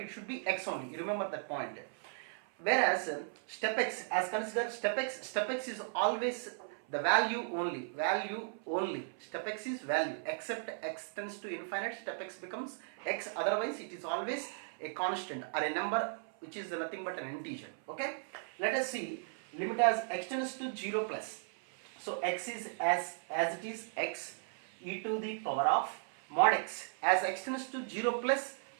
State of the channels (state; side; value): silent; left; 54 dB below the other